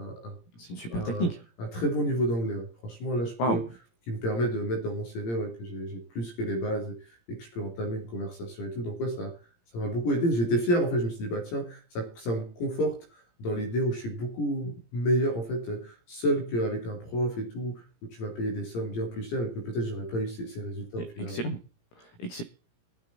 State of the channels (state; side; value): late; right; 17 ms